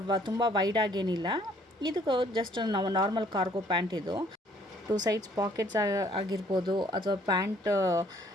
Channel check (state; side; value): normal; both; correlation 0.61